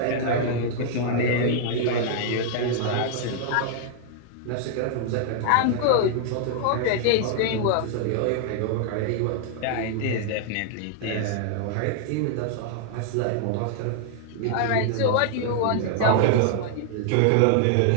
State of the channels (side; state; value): both; different; correlation -0.01